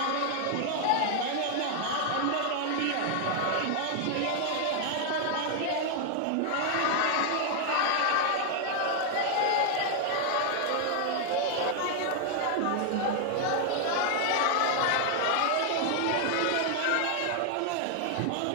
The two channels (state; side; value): different; both; correlation 0.00